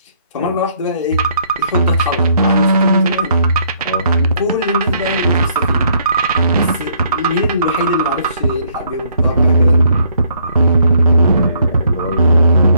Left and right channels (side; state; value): both; inverted; correlation -0.67